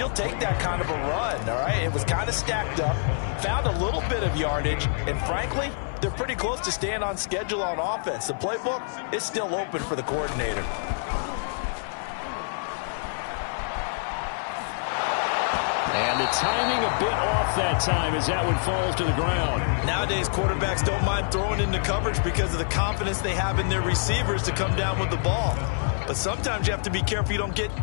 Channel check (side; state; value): right; silent; 57 dB below the other